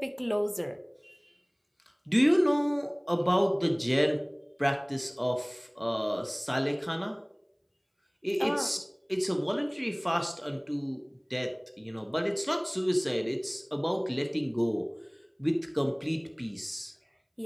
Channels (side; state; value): both; identical; correlation 1.00